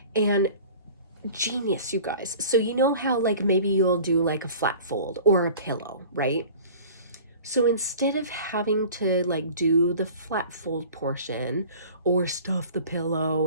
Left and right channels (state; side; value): inverted; both; correlation -0.43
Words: And genius, you guys. So you know how like maybe you'll do like a flat fold or a pillow, right? So instead of having to like do the flat fold portion or stuff the